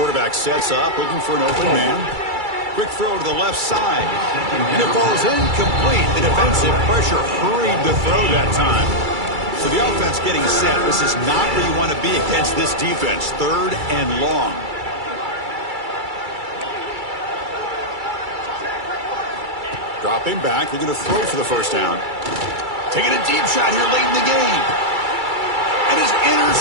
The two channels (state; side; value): late; left; 2.3 ms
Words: sets up, looking for an open man. Quick throw to the left side. And it falls incomplete. The defensive pressure hurried the throw that time. So the offense getting set. This is not where you want to be against this defense. 3rd and long. Dropping back. They're going to throw for the first down. Taking a deep shot here late in the game. And is